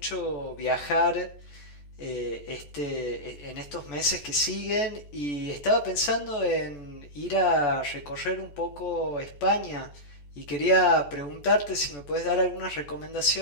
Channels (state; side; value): late; right; 14 ms